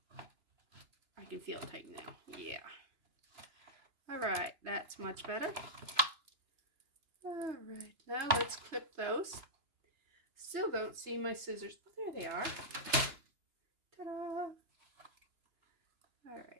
I can feel it tighten now. Yeah. All right, that's much better. All right, now let's clip those. Still don't see my scissors. Oh, there they are. Ta-da! All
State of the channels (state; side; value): late; left; 2.9 ms